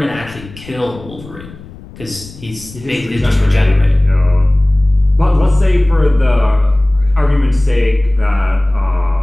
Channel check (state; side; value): noise; left; rumble, 18 dB below the sound